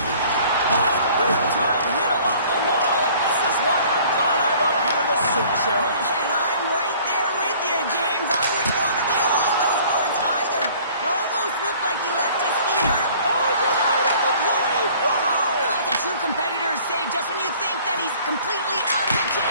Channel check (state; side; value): inverted; both; correlation -0.52